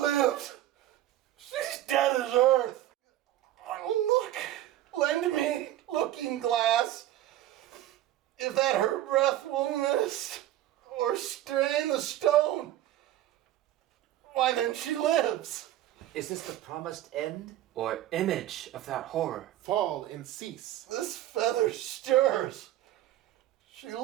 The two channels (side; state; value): left; quieter; 13.6 dB